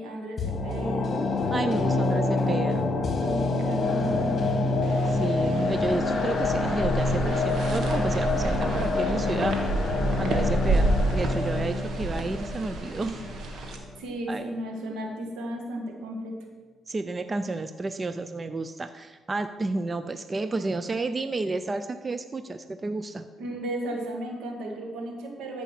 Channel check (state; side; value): normal; both; correlation 0.76